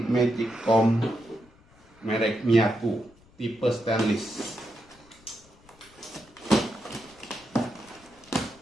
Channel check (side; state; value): left; noise; rumble, 28 dB below the sound